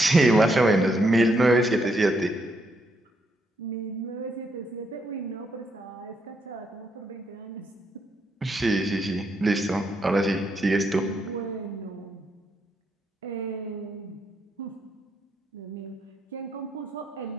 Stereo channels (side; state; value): both; normal; correlation 0.77